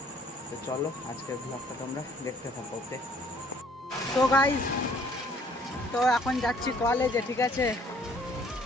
তো চলো আজকের ব্লগটা তোমরা দেখতে থাকো, ওকে। তো গাইজ তো এখন যাচ্ছি কলেজে, ঠিক আছে।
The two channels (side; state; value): both; normal; correlation 0.60